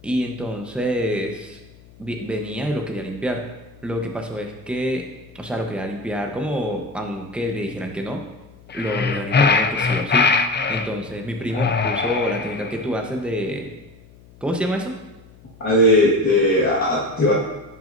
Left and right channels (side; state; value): left; noise; hum, 24 dB below the sound